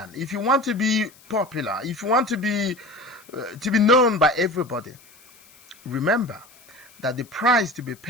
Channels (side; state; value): left; noise; hiss, 26 dB below the sound